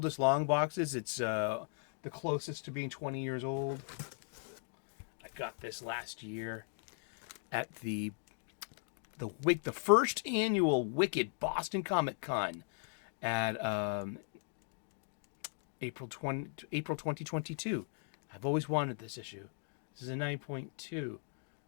long boxes. It's the closest to being 20 years old. I got this last year at the first annual Wicked Boston Comic Con at April 2022. I've always wanted this issue. This is a 9.2.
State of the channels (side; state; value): right; silent; 52 dB below the other